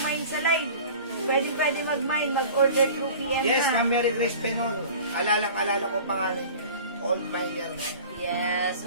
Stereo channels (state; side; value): inverted; both; correlation -0.41